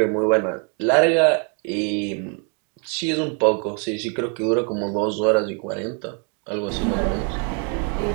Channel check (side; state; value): left; quieter; 36.2 dB